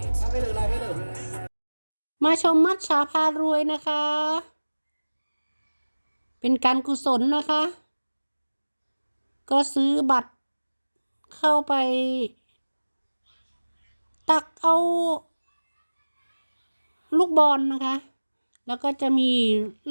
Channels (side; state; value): both; inverted; correlation -1.00